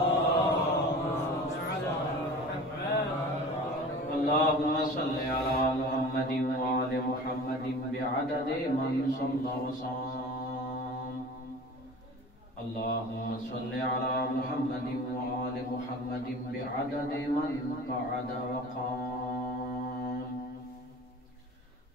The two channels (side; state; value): both; normal; correlation 0.39